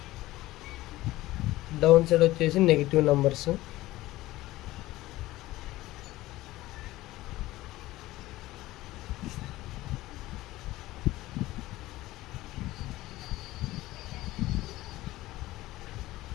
డౌన్ సైడ్ వచ్చేసి నెగిటివ్ నెంబర్స్.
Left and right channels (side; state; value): right; quieter; 17.3 dB